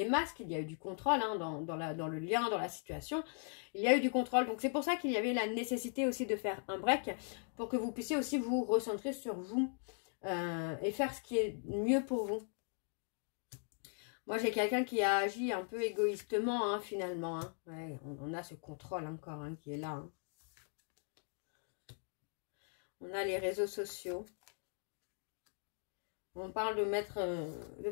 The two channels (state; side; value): silent; right; 52 dB below the other